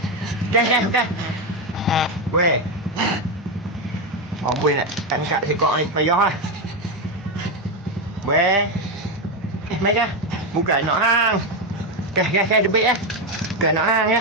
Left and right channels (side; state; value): both; normal; correlation 0.09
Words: Kan. Weh. Amboi nak angkat sekok ni payah ah. Weh. Mai kan? Bukan nak hang. Kan debit ah. Bukan nak hang